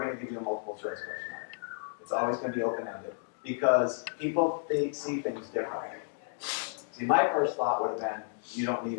going to give you a multiple choice question. It's always going to be open-ended because they see things differently. See, my first thought would have been, you don't need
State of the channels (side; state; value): right; silent; digital silence